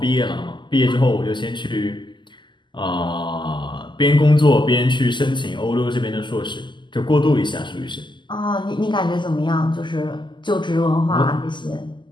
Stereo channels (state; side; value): late; right; 0.22 ms